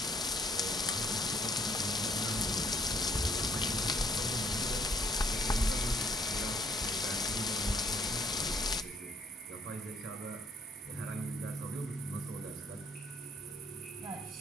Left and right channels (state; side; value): normal; both; correlation 0.64